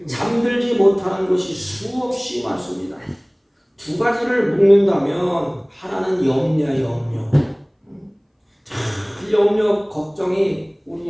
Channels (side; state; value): both; identical; correlation 1.00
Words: 잠들지 못하는 것이 수없이 많습니다. 두 가지를 묶는다면 하나는 염려야, 염려. 염려, 걱정이